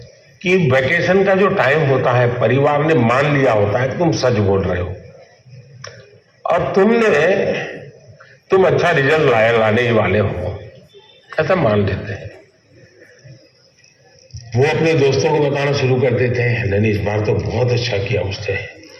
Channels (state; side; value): identical; both; correlation 1.00